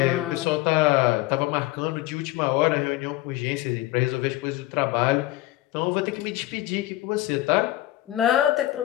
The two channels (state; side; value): quieter; right; 16.5 dB